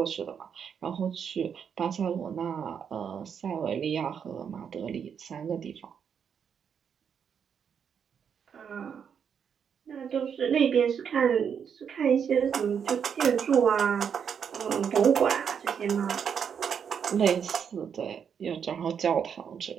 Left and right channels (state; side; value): quieter; left; 7.4 dB